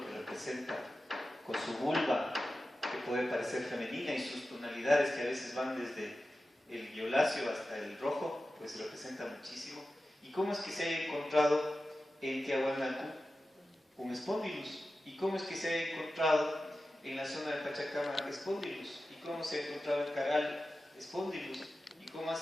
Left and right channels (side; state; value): both; normal; correlation 0.94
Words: que representa, con su vulva, que puede parecer femenina, y sus tonalidades que a veces van desde el violáceo hasta el rojo, pues representa muchísimo. ¿Y cómo es que se ha encontrado en Tiahuanacu un Spondylus? ¿Y cómo es que se ha encontrado en la zona de Pachacama Spondylus? ¿Y cómo se ha encontrado en Caral Spondylus? ¿Y cómo